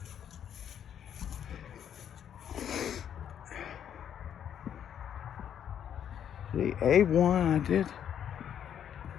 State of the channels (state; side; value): quieter; right; 9.2 dB